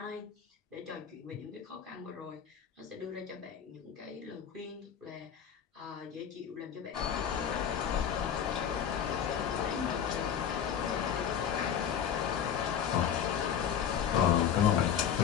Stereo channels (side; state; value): right; quieter; 8.5 dB